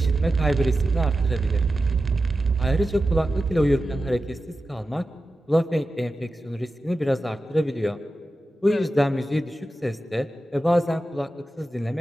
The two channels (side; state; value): both; normal; correlation 0.92